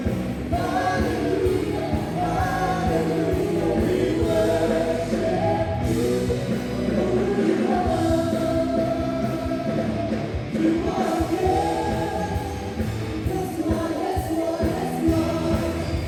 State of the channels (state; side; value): identical; both; correlation 1.00